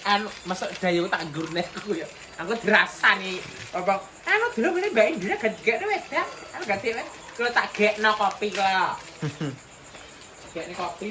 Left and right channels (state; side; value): identical; both; correlation 1.00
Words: anu masuk dayu tak gurne aku ya. Aku dirasani. Apa? Anu dulu ini Mbak Indira gak wes ya. Anu ganti wes. Kalau tak gekno kopi kok. Gekno kopi